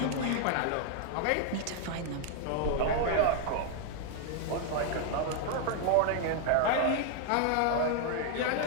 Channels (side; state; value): both; different; correlation 0.00